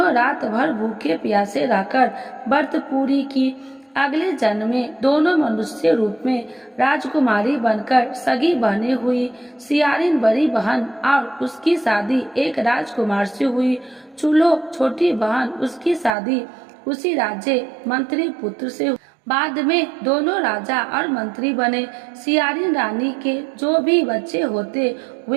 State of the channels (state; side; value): drops out; left; at 16.2 s